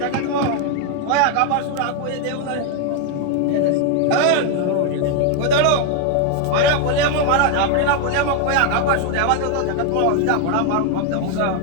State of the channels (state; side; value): different; both; correlation 0.01